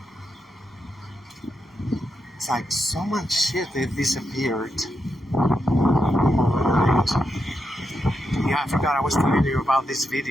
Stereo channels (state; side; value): normal; both; correlation 0.85